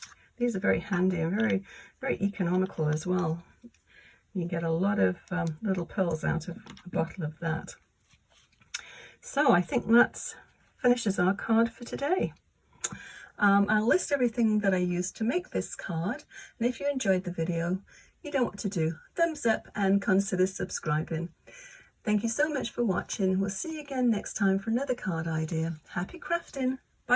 These are very handy and very, very economical as well. You get a lot of little pearls out of a bottle of that. So I think that finishes our card for today. I'll list everything that I used to make this card, and if you enjoyed the video, you know what to do. Thumbs up and consider subscribing. Thank you so much for watching. We'll see you again next time for another card idea. Happy crafting!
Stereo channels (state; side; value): identical; both; correlation 1.00